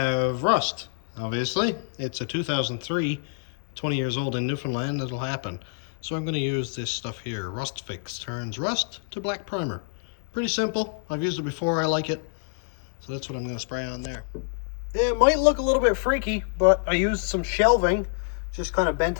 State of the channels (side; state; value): right; silent; digital silence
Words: rust, obviously. It's a 2003, 20 years old in Newfoundland, that'll happen. So I'm gonna use this stuff here. Rust Fix turns rust to black primer. Pretty simple. I've used it before, I like it. So that's what I'm gonna spray on there. It might look a little bit freaky, but I used some shelving, just kind of bent